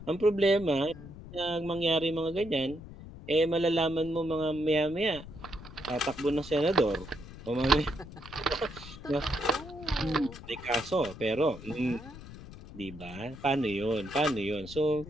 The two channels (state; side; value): noise; left; rumble, 15 dB below the sound